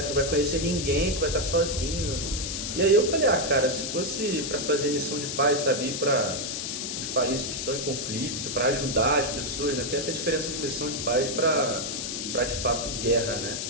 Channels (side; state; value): left; noise; hiss, 4 dB below the sound